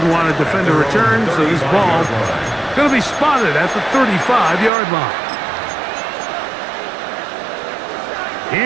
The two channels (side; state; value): left; drops out; at 4.7 s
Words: want to defend a return, so this ball going to be spotted at the 35-yard line.